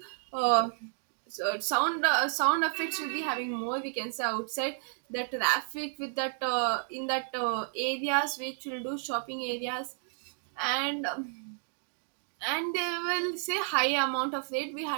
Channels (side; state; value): left; silent; digital silence